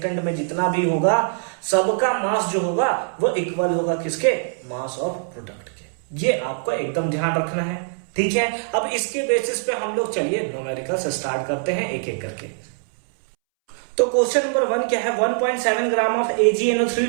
में जितना भी होगा सबका मास जो होगा वो इक्वल होगा किसके? मास ऑफ प्रोडक्ट के। ये आपको एकदम ध्यान रखना है। ठीक है, अब इसके बेसिस पे हम लोग चलिए न्यूमेरिकल्स स्टार्ट करते हैं एक एक करके। तो क्वेश्चन नंबर 1 क्या है, 1.7 ग्राम ऑफ AgNO3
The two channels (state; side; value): silent; left; 64 dB below the other